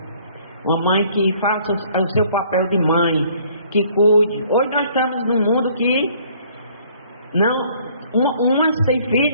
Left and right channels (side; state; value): both; inverted; correlation -0.59